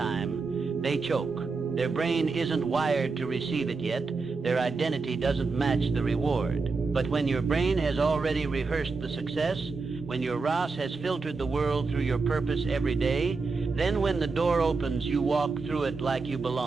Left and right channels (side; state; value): left; quieter; 4.3 dB